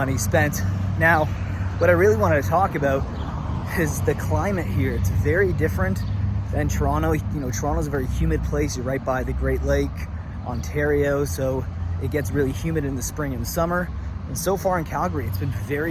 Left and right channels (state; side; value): identical; both; correlation 1.00